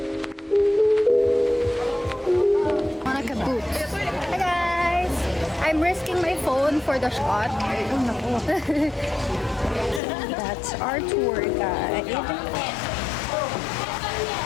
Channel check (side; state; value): right; drops out; at 10.0 s